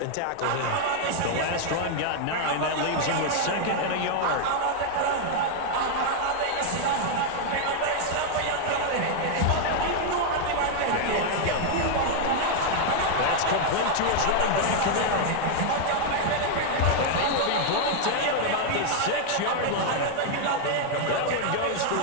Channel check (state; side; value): different; both; correlation 0.00